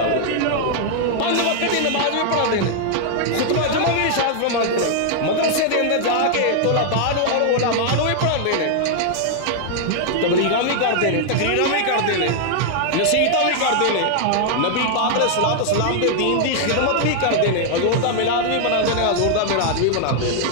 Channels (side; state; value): both; different; correlation 0.00